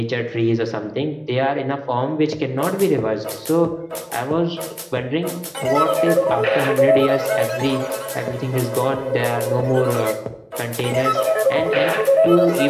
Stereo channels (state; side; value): identical; both; correlation 1.00